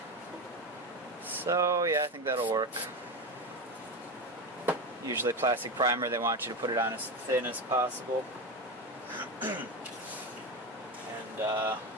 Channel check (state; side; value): normal; both; correlation 0.18